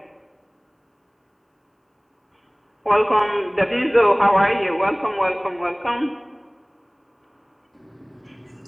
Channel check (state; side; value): identical; both; correlation 1.00